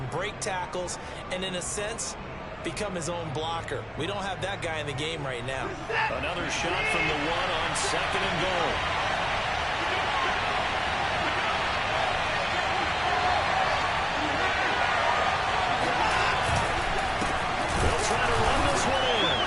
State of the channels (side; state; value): both; identical; correlation 1.00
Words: break tackles, and in a sense, become his own blocker. We don't have that guy in the game right now. Another shot from the 1 on 2nd and goal. They'll try to run this one in.